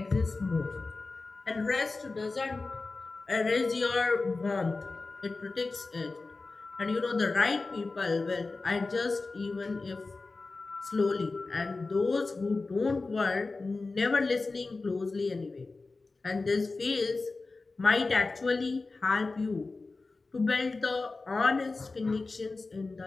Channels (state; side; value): quieter; right; 3.7 dB